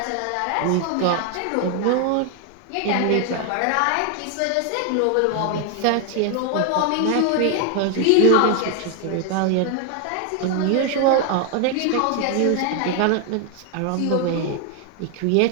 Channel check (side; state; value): both; different; correlation 0.00